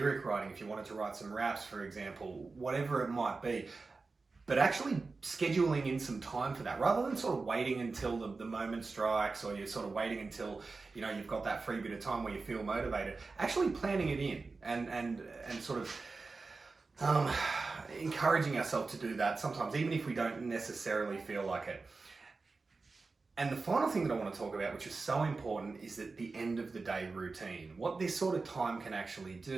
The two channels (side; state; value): left; quieter; 4.0 dB